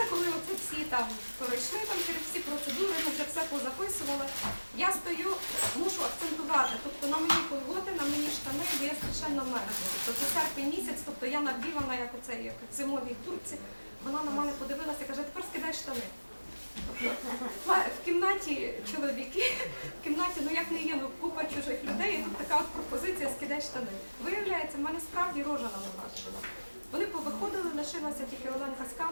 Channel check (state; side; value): inverted; both; correlation -1.00